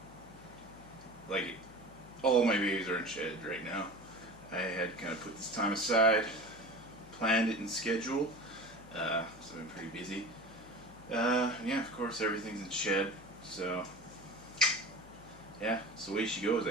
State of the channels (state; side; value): noise; left; hum, 21 dB below the sound